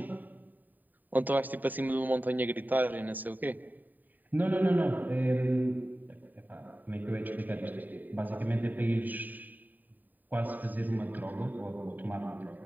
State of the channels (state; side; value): late; left; 0.087 ms